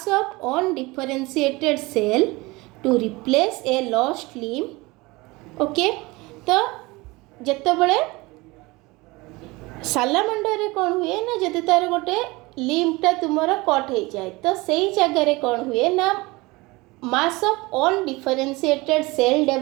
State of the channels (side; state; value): left; quieter; 22.8 dB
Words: of undifferentiated cell to replace a lost limb। Okay तो जिते बड़े सालामांडर रे कौन हुए ना जदि तार गोटे लिम्बटा तुमर कट हो जाए तो सही जगह कौन हुए ना mass of undifferentiated cell